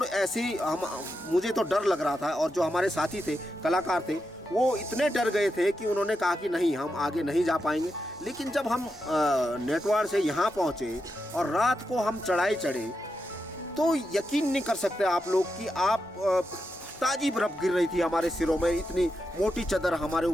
ऐसी मुझे तो डर लग रहा था और जो हमारे साथी थे, कलाकार थे, वो इतने डर गए थे कि उन्होंने कहा कि नहीं, हम आगे नहीं जा पाएंगे। लेकिन जब हम नेटवार से यहाँ पहुँचे और रात को हम चढ़ाई चढ़े तो यकीन नहीं कर सकते आप लोग कि ताज़ी बर्फ़ गिर रही थी हमारे सिरों में। इतनी मोटी चादर हमारे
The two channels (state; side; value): normal; both; correlation 0.86